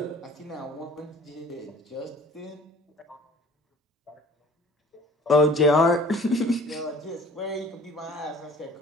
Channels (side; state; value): both; normal; correlation 0.50